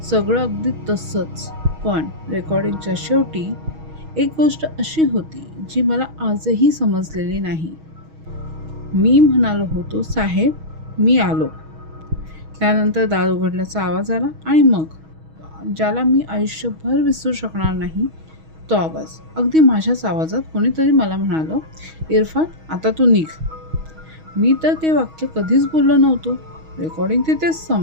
सगळं अगदी तसंच. पण रेकॉर्डिंगच्या शेवटी एक गोष्ट अशी होती जी मला आजही समजलेली नाही. मी म्हणालो होतो, साहेब मी आलो. त्यानंतर दार उघडल्याचा आवाज आला आणि मग ज्याला मी आयुष्यभर विसरू शकणार नाही तो आवाज. अगदी माझ्याच आवाजात कोणीतरी मला म्हणालं, इरफान आता तू निघ. मी तर ते वाक्य कधीच बोललो नव्हतो. रेकॉर्डिंग तिथेच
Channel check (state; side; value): late; left; 6.3 ms